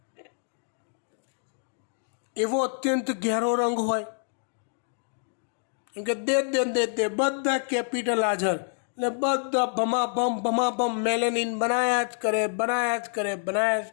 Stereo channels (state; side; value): silent; right; 60 dB below the other